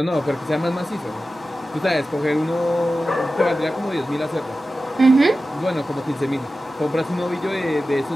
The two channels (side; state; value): both; normal; correlation 0.94